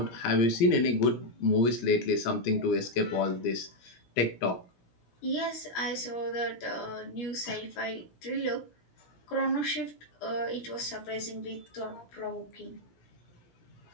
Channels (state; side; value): late; right; 17 ms